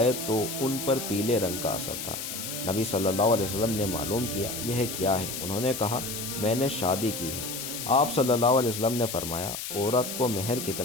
تو ان پر پیلے رنگ کا اثر تھا۔ نبی صلی اللہ علیہ وسلم نے معلوم کیا، یہ کیا ہے؟ انہوں نے کہا، میں نے شادی کی ہے۔ آپ صلی اللہ علیہ وسلم نے فرمایا، عورت کو مہر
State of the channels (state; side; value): noise; left; hiss, 6 dB below the sound